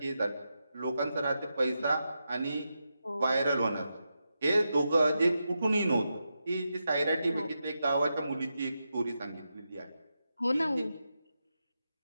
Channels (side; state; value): both; inverted; correlation -0.87